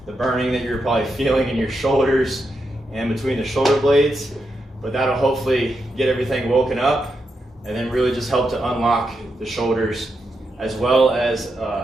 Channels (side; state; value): both; normal; correlation 0.84